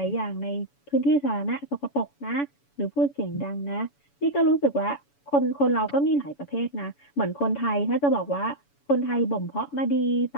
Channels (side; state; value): right; late; 7.0 ms